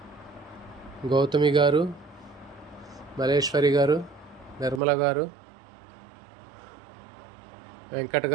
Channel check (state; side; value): drops out; left; at 4.8 s